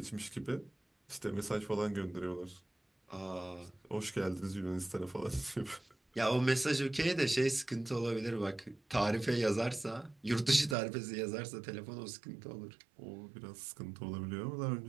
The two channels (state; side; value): drops out; left; at 10.8 s